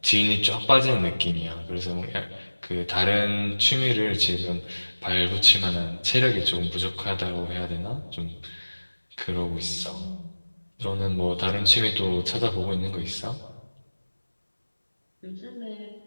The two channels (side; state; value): both; inverted; correlation -1.00